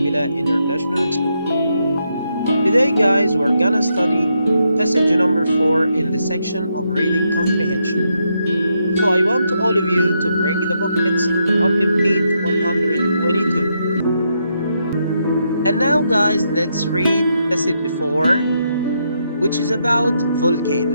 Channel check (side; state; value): both; inverted; correlation -0.80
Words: International School. Today, guys, we're gonna study passage number 4 in the section of reading comprehension. So I want all of you to bring the booklets and open page 122. And now, guys, let's read passage 4, which is about